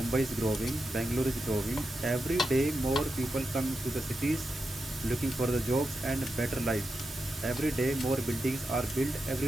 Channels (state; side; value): normal; both; correlation 0.88